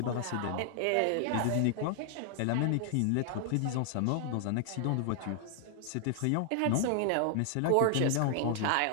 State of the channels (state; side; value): different; both; correlation 0.00